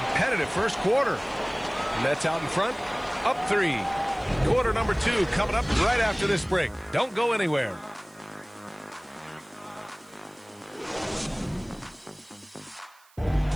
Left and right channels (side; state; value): right; noise; hiss, 28 dB below the sound